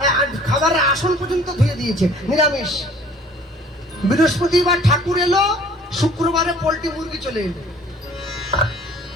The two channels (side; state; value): both; normal; correlation 0.52